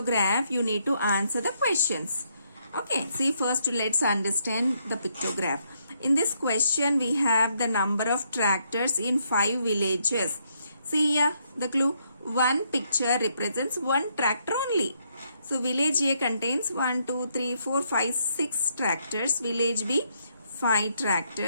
you need to answer the questions. Okay, see, first let's understand the pictograph. In this question we have the number of tractors in 5 villages. See here the clue, one picture represents one tractor only. So village A contains 1, 2, 3, 4, 5, 6 tractors. Village B 5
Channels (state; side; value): inverted; both; correlation -0.74